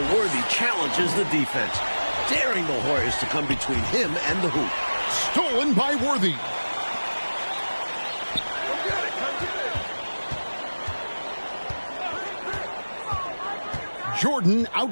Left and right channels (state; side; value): inverted; both; correlation -1.00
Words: Worthy challenges the defense, daring the Hoyas to come between him and the hoop. Stolen by Worthy. Jordan